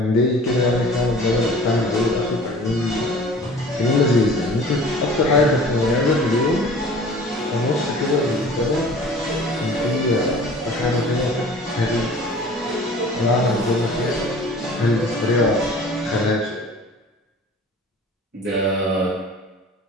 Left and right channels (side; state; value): both; normal; correlation 0.45